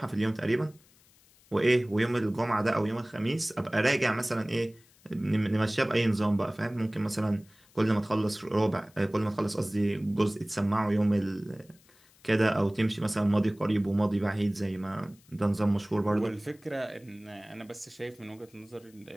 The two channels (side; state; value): left; noise; hiss, 29 dB below the sound